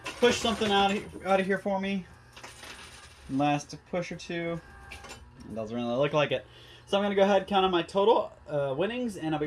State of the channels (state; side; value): identical; both; correlation 1.00